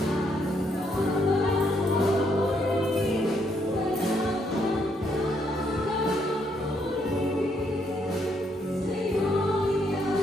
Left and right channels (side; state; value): both; normal; correlation 0.74